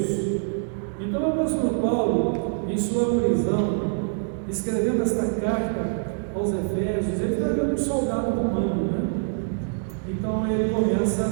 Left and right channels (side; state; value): left; silent; digital silence